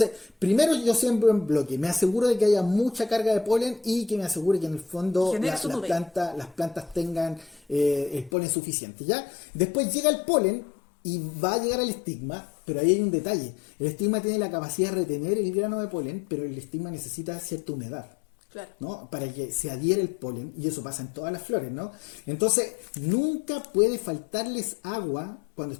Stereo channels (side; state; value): right; drops out; at 8.3 s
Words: primero yo siembro en bloque, me aseguro de que haya mucha carga de polen y que me asegure que en el fondo las plantas tengan el polen suficiente, ¿ya? Después llega el polen y va a llegar al estigma, pero ahí hay un detalle. El estigma tiene la capacidad de retener el grano de polen, pero el estigma necesita cierta humedad. Claro. ¿No? Para que se adhiera el polen, y eso pasa en todas las flores, ¿no? Entonces, nunca puede faltarles agua cuando